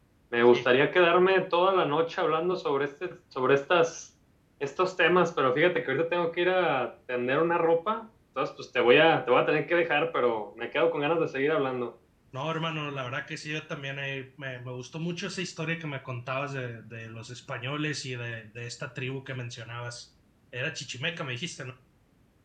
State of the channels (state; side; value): identical; both; correlation 1.00